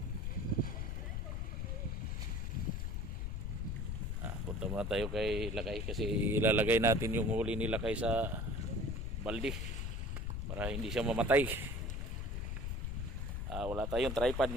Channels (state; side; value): noise; left; rumble, 2 dB below the sound